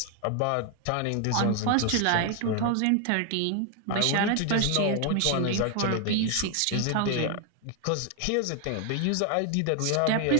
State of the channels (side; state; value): both; different; correlation 0.01